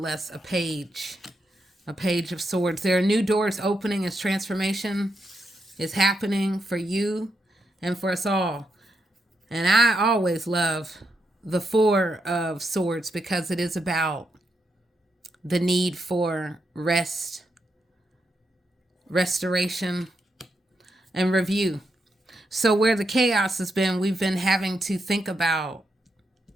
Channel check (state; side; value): normal; both; correlation 0.82